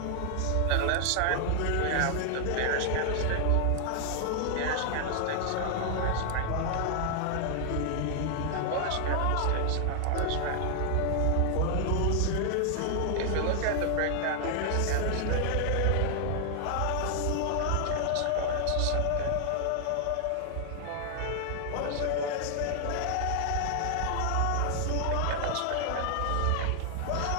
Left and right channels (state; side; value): different; both; correlation 0.00